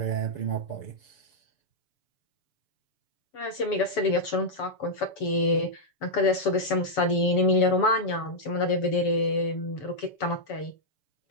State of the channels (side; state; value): right; late; 7.0 ms